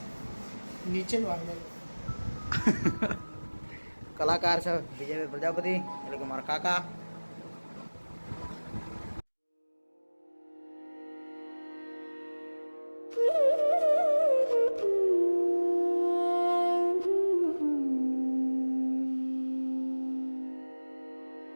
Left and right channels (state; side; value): inverted; both; correlation -1.00